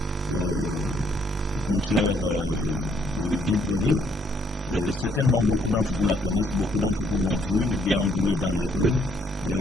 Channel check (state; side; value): normal; both; correlation 0.68